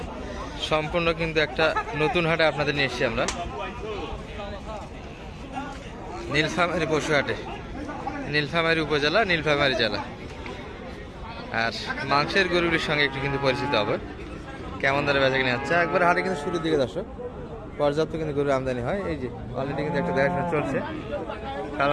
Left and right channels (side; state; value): both; identical; correlation 1.00